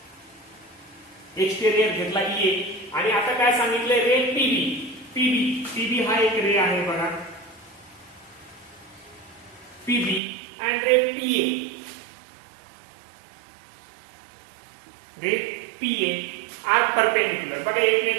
घेतला ए. आणि आता काय सांगितलंय, रे पीबी हा एक रे आहे बघा, PB and ray PA are perpendicular. बघा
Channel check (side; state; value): left; drops out; at 10.2 s